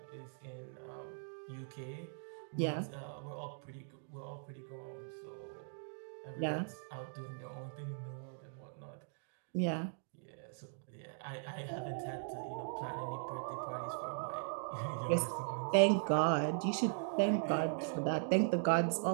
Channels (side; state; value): left; silent; digital silence